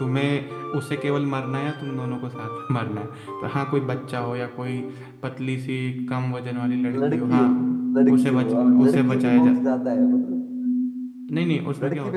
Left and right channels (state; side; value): identical; both; correlation 1.00